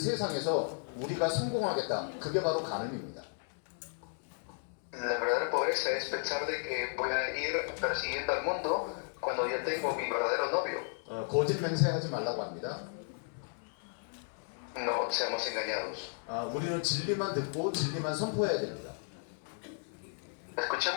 우리가 성공하겠다. 그게 바로 가늠입니다. La verdadera pobreza es pensar de que voy a ir persiguiendo al mundo cuando ya tengo mi verdadero novio. 거짓 맹세하지 말라고 합니다. No seamos engañados. 우리는 진리만 듣고 진리만 선포해야 됩니다.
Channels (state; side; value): silent; right; 55 dB below the other